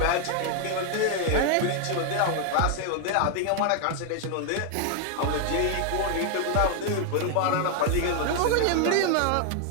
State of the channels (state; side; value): different; both; correlation 0.00